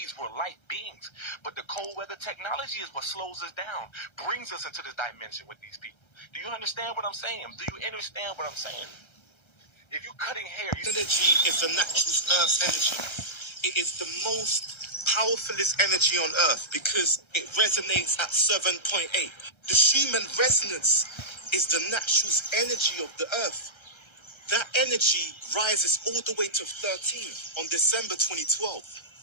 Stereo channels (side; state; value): right; late; 1.3 ms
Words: We're light beings. But the cold weather technology is what slows us down, brings us into this dimension with these people. Do you understand what I'm saying? Do you understand what I'm saying? If you're cutting hair, energy is the natural Earth's energy. It is the most powerfulest energy on Earth because it resonates at 7.8. The Schumann resonance is the natural energy of the Earth. That energy rises all the way to 13 on December 2012.